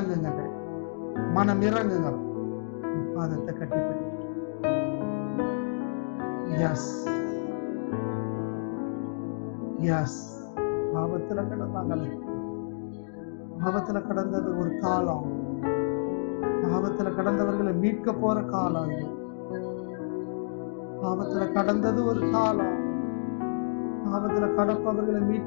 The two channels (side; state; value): right; silent; digital silence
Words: மனம் இறங்குங்க, பாதத்தை கட்டிப்பிடி. எஸ் எஸ் பாவத்துல கிடந்தாங்களே, பாவத்துல கடந்தது ஒரு காலம், பாவத்துல கடந்தவர்களை மீட்க போற காலம் இது. பாவத்துல கடந்தது ஒரு காலம், பாவத்துல கடப்பவர்களை